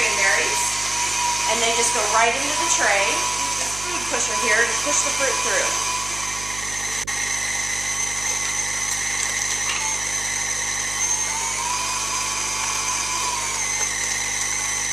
and they just go right into the tray. Use this food pusher here to push the fruit through.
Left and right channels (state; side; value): noise; right; hum, 13 dB below the sound